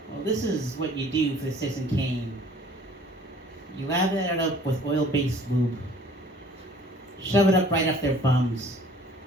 Well, this is what you do for the Citizen Kane. You lather it up with oil-based lube. Shove it up right up their bums.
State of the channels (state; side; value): normal; both; correlation 0.52